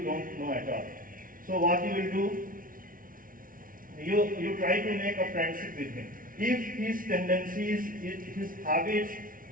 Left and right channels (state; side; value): late; left; 0.40 ms